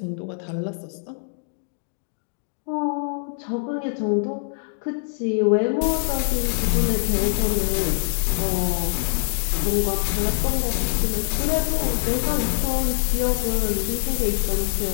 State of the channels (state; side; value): silent; right; digital silence